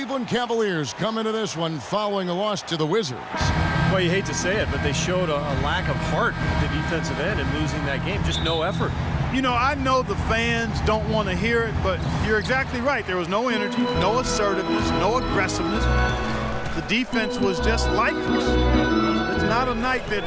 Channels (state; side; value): identical; both; correlation 1.00